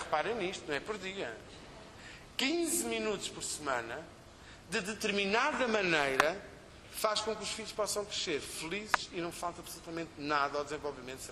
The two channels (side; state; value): both; identical; correlation 1.00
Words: nisto, não é por dia. 15 minutos por semana, de determinada maneira, faz com que os filhos possam crescer felizes e não falta absolutamente nada ao desenvolvimento